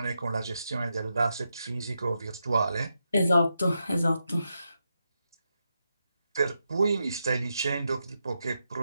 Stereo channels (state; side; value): inverted; both; correlation -0.86